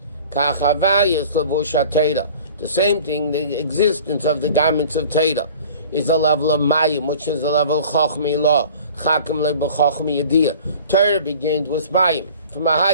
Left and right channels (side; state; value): both; inverted; correlation -0.44